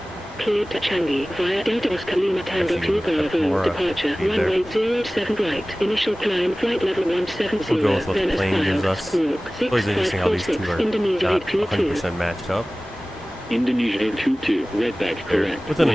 Cleared to Changi, via Delta Oscar Lima Tango 2 Bravo, departure, runway 07 right, initial climb, flight level 170, We'll go with what then the as plane gives filed, us. squawk, It's always interesting how these two 6546, are Indonesia not 822. 100% matched up. Indonesia 822, redback correct. Within a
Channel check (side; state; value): both; normal; correlation 0.98